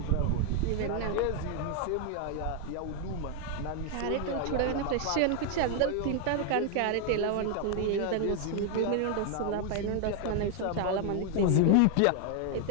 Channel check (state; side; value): different; both; correlation 0.01